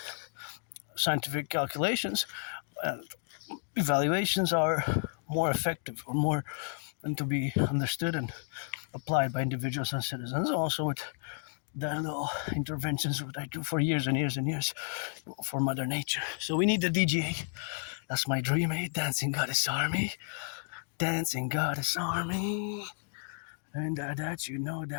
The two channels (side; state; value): right; silent; 56 dB below the other